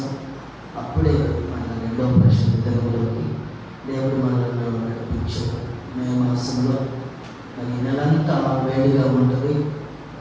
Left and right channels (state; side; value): identical; both; correlation 1.00